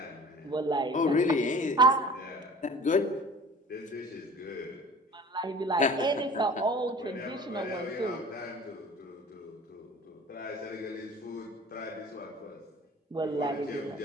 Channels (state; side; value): normal; both; correlation 0.44